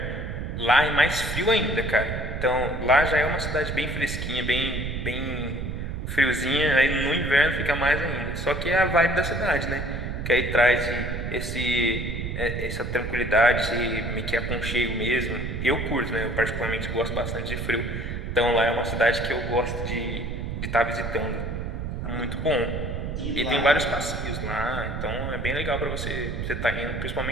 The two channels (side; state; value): right; noise; rumble, 4 dB below the sound